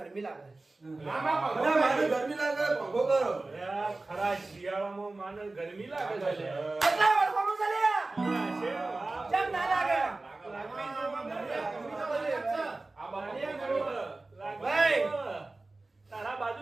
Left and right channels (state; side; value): quieter; left; 3.2 dB